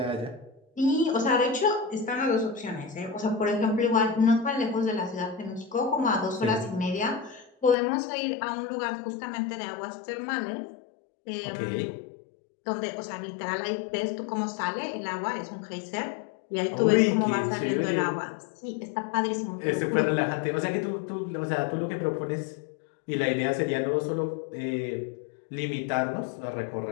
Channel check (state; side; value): drops out; right; at 7.8 s